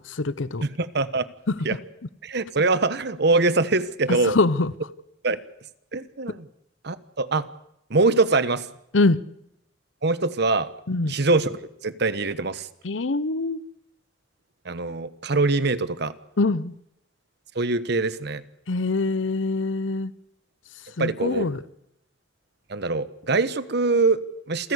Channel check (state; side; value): normal; both; correlation 0.04